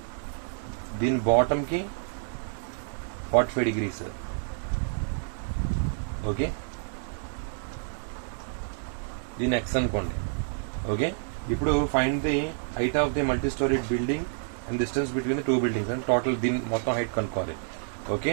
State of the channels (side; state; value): left; silent; digital silence